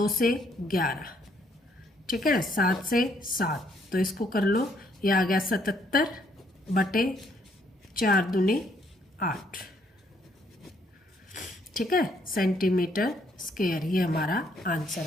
से 11, ठीक है 7 से 7, तो इसको कर लो, ये आ गया 77/4 दूनी 8। ठीक है, सेंटीमीटर स्क्वायर, ये हमारा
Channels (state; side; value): normal; both; correlation 0.69